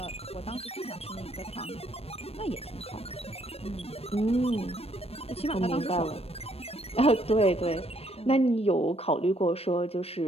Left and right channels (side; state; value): right; late; 0.29 ms